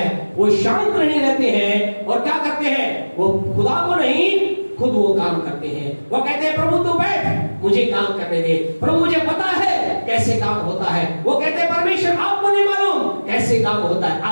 वो शांत नहीं रहते हैं और क्या करते हैं? वो खुदा को नहीं, खुद वो काम करते हैं। वो कहते हैं, प्रभु तू बैठ, मुझे काम करने दे। प्रभु मुझे पता है कि कैसे काम होता है। वो कहते हैं परमेश्वर आपको नहीं मालूम कैसे काम होता है।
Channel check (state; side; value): inverted; both; correlation -1.00